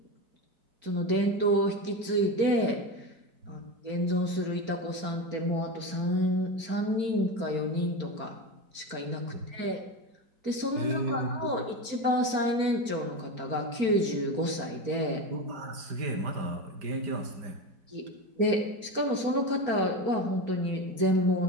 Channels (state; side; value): late; left; 4.4 ms